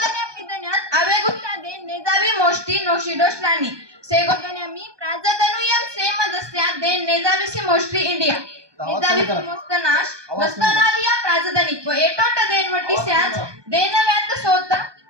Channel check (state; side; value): late; left; 1.2 ms